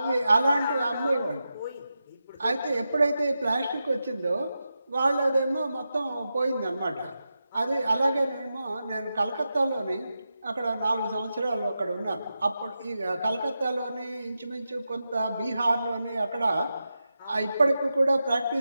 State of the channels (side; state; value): both; inverted; correlation -0.90